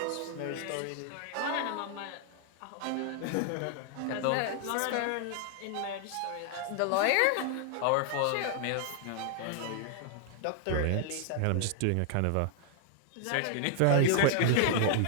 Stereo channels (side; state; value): both; different; correlation 0.00